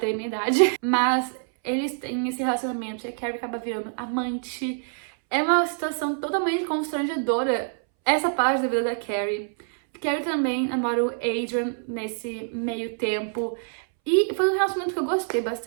a minha idade. Mas eles têm esse relacionamento e a Carrie acaba virando amante. É uma situação totalmente constrangedora essa parte da vida da Carrie. Carrie também namora o Adrian nesse meio tempo. E foi um relacionamento que eu gostei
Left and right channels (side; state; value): left; silent; 61 dB below the other